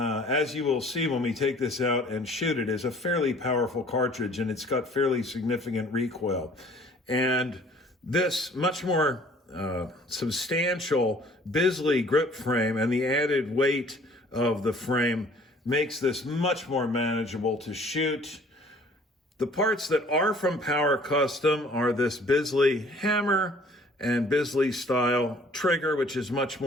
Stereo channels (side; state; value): both; normal; correlation 0.54